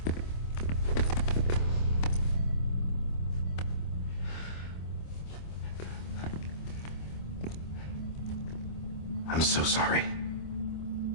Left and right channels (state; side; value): late; right; 25 ms